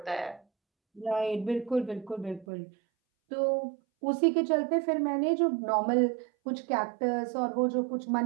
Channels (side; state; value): left; drops out; at 2.5 s